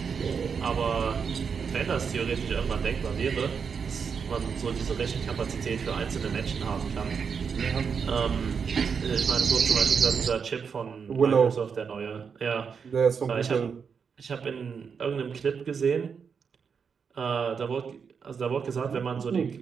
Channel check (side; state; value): left; quieter; 6.2 dB